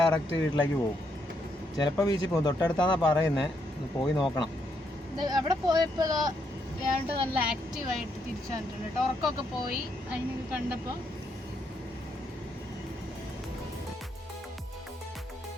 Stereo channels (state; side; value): normal; both; correlation 0.76